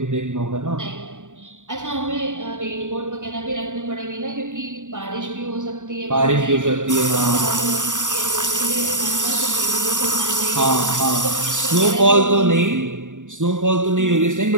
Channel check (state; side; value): late; left; 0.86 ms